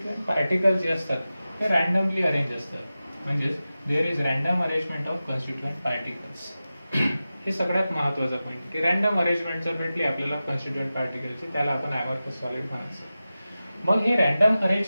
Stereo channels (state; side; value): inverted; both; correlation -0.94